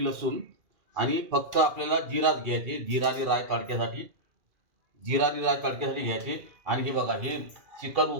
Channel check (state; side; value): late; left; 2.4 ms